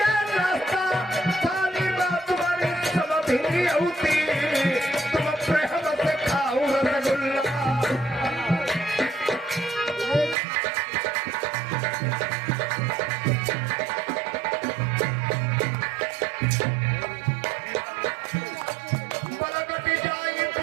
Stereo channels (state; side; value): drops out; left; at 10.4 s